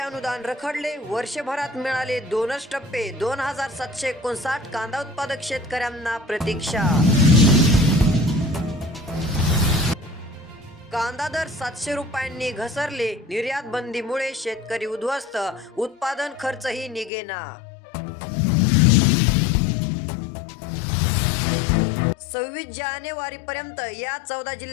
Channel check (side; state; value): right; drops out; at 17.1 s